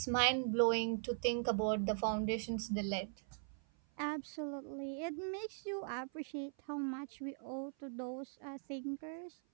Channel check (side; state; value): left; silent; 51 dB below the other